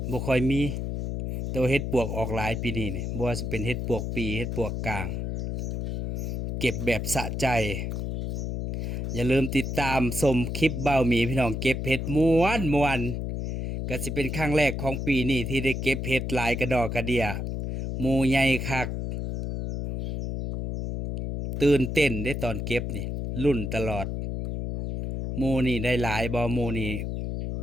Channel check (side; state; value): left; noise; hum, 3 dB below the sound